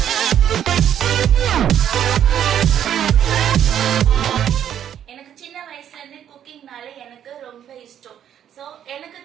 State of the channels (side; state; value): left; quieter; 9.9 dB